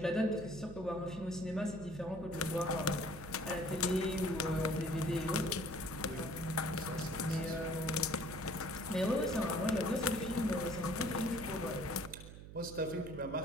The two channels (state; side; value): noise; right; hum, 13 dB below the sound